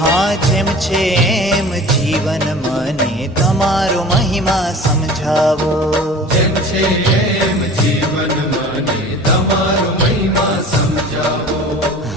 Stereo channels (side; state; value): both; normal; correlation 0.41